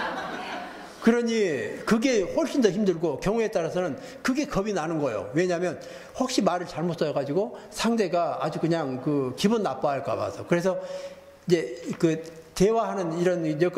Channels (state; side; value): identical; both; correlation 1.00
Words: 그러니 그게 훨씬 더 힘들고 경우에 따라서는 그게 겁이 나는 거예요. 왜냐하면 혹시 말을 잘못 써가지고 상대가 아주 그냥 그 기분 나빠할까 봐서. 그래서 이제 그 대화하는 이런